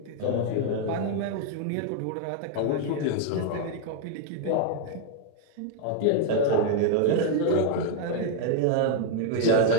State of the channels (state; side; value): different; both; correlation 0.00